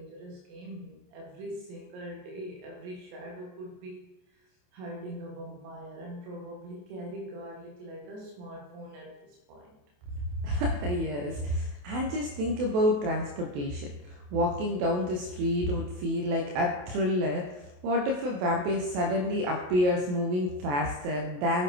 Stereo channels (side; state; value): left; late; 28 ms